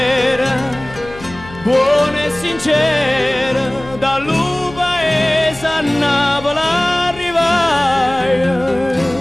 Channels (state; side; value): noise; left; hum, 17 dB below the sound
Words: buona e sincera, dal paese a Napoli arrivai,